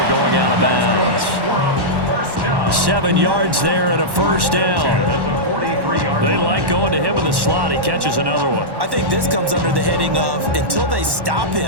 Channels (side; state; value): left; late; 1.1 ms